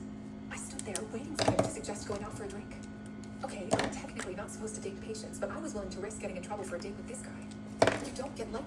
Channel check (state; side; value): identical; both; correlation 1.00